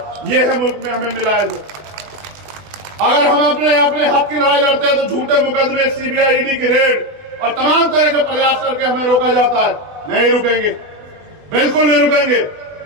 ये है मुल्क में हमें मिला है। अगर हम अपने हक की लड़ाई लड़ते हैं तो झूठे मुकदमे, सीबीआई, ईडी की रेड और तमाम तरह के प्रयास करके हमें रोका जाता है। नहीं रुकेंगे, बिल्कुल नहीं रुकेंगे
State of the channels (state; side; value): late; left; 20 ms